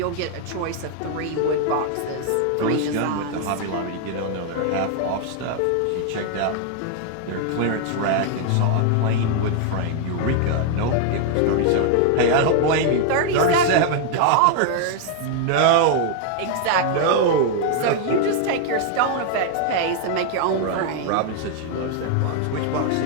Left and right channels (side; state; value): both; different; correlation 0.00